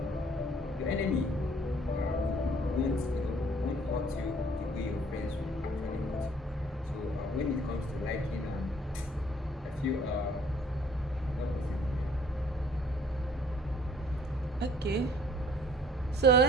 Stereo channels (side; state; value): both; normal; correlation 0.58